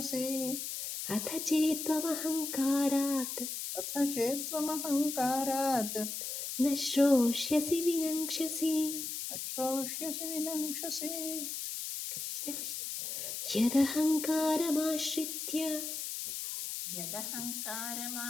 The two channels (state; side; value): noise; left; hiss, 5 dB below the sound